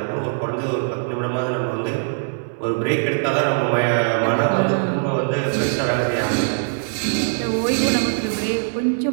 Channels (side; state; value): left; silent; digital silence